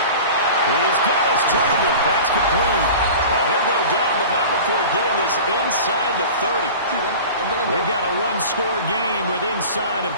He's got his target. That's complete. And he'll go down, but not before getting this inside the 30. We've got a 1-score game with inside of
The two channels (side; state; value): both; inverted; correlation -0.37